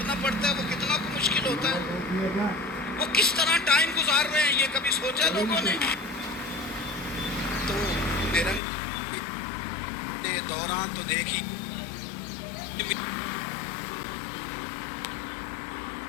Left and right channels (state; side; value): drops out; right; at 8.6 s